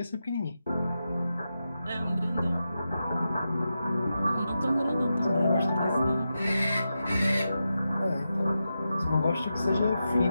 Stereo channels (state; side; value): inverted; both; correlation -0.89